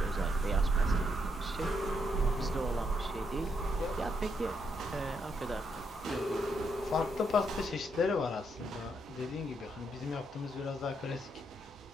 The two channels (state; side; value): normal; both; correlation 0.77